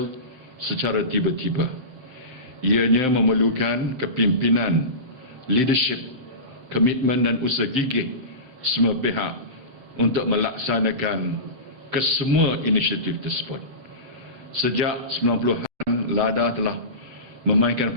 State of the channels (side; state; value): left; late; 7.7 ms